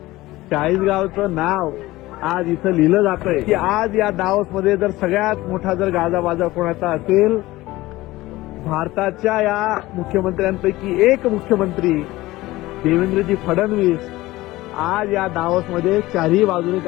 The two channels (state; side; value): quieter; right; 18.4 dB